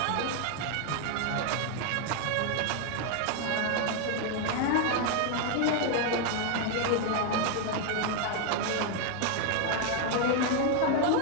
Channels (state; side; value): different; both; correlation 0.01